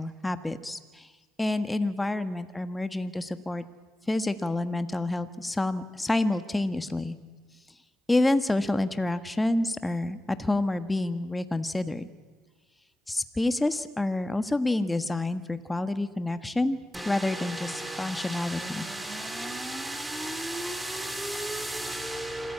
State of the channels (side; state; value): both; normal; correlation 0.95